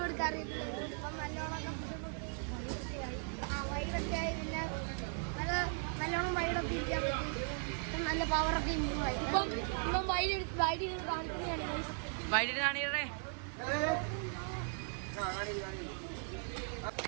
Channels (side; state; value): left; silent; 53 dB below the other